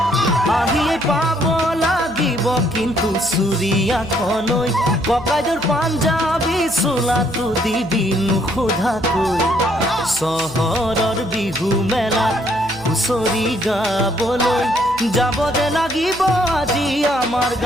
আহিয়ে পাব লাগিব কিন্তু চুৰিয়াখনৈ ককাইদেউৰ পাঞ্জাবী চোলাটো দিবি নোসোধাকৈ চহৰৰ বিহু মেলাত হুঁচৰি গাবলৈ যাব যে লাগিব আজি আমাৰ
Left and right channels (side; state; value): right; noise; hum, 18 dB below the sound